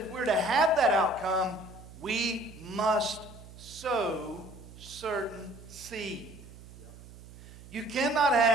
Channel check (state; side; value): noise; right; hum, 17 dB below the sound